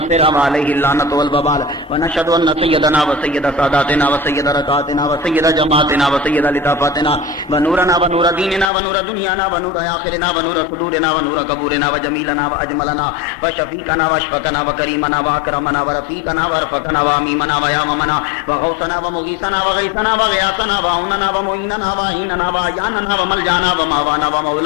وعليه اللعنة والوبال ونشهد ان سيدنا وسيد ساداتنا وسيد ركعاتنا وسيد جماعتنا وسيد لطافاتنا ونورنا ونور ديننا ونور دنيانا ونور آخرنا ونور صدورنا ونور قبورنا وجميلنا وأجملنا وشفيقنا واشفقنا وكريمنا وأكرمنا ورفيقنا ورفقنا وأميمنا وياممنا وغوثنا ومغيثنا وغيثنا وغياثنا وعوننا ومعيننا وعيننا وعياننا وملجانا وماوانا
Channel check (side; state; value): right; drops out; at 8.7 s